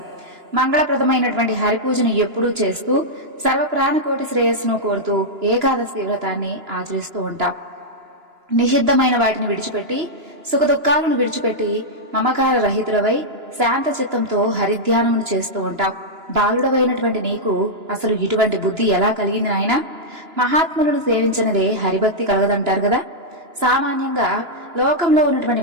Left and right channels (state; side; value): late; left; 2.9 ms